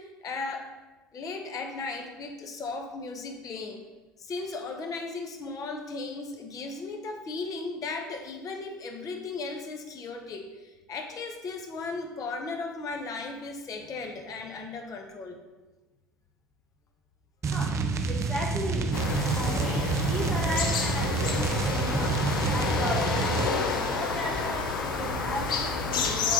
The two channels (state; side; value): normal; both; correlation 0.43